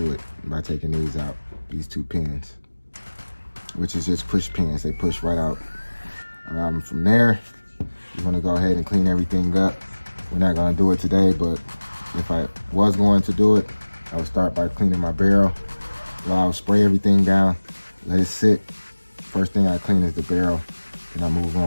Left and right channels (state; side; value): inverted; both; correlation -1.00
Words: it, by taking these out, these two pins, which is just push pins, they push right out. From there, you want to go ahead and clean everything up. We're not going to do it today, but if I was going to do it, I would start by cleaning my barrel. Well, I would spray everything down, let it sit. First thing I clean is the barrel, and I move